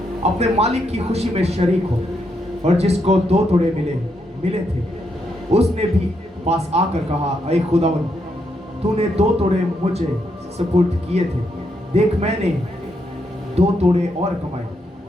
अपने मालिक की खुशी में शरीक हो। और जिसको 2 तोड़े मिले थे उसने भी पास आकर कहा, ऐ खुदावंद, तूने 2 तोड़े मुझे सुपुर्द किए थे, देख मैंने 2 तोड़े और कमाए।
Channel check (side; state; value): both; normal; correlation 0.79